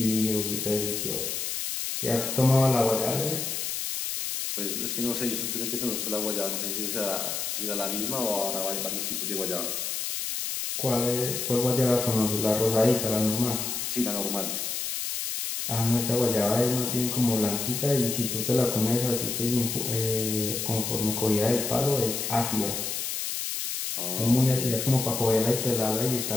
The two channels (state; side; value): noise; left; hiss, 3 dB below the sound